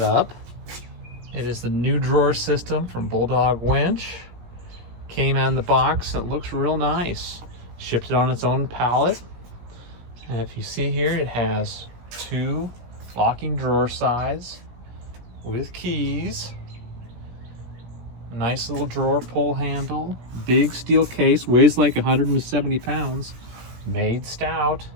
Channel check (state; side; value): late; left; 17 ms